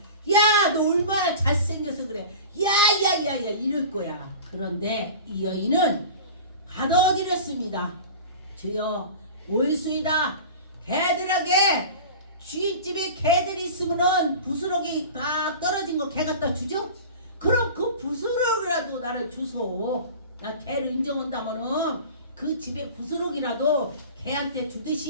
야 너 얼마나 잘생겨서 그래, 야야야야 이럴 거야. 그런데 이 여인은 받아들였습니다. 주여 올수이다. 개들에게 주인집에 개들이 있으면은 부스러기 딱 떨어진 거 개 갖다 주죠? 그럼 그 부스러기라도 나를 주소. 나 개를 인정한다면은 그 집에 부스러기라도 개한테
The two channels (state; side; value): inverted; both; correlation -0.35